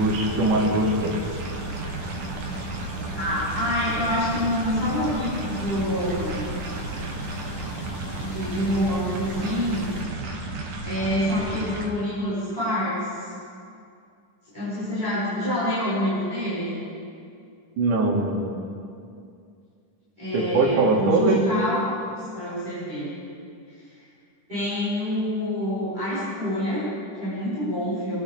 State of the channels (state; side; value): late; left; 10 ms